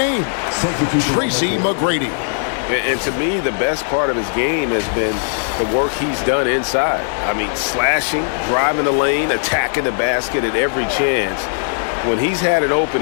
Tracy McGrady. And to me, the best part of his game has been the work he's done inside. I mean, slashing, driving the lane, attacking the basket at every chance. When he's had an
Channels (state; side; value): silent; right; digital silence